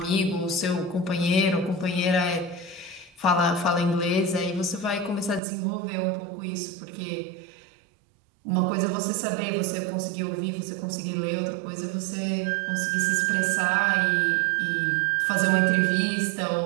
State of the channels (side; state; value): left; drops out; at 5.4 s